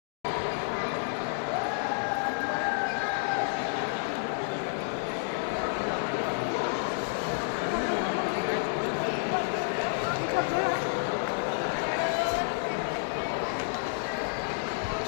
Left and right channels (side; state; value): right; silent; digital silence